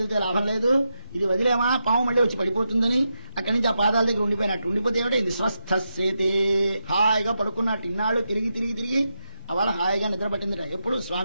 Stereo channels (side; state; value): both; inverted; correlation -0.86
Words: లాభం లేదు, ఇది వదిలేమా పాము మళ్ళీ వచ్చి పడిపోతుందని అక్కడి నుంచి ఆ పాదాల దగ్గర ఉండిపోయినట్టు. ఉండిపోతే ఏమిటో ఇది స్వస్థసేతే, హాయిగా పడుకున్నట్టు. ఇన్నాళ్ళు తిరిగి అవాళ హాయిగా నిద్ర పట్టిందిరా. ఎప్పుడు